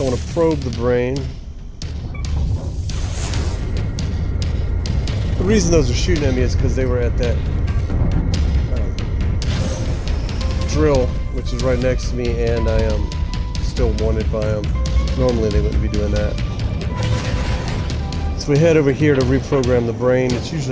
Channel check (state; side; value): identical; both; correlation 1.00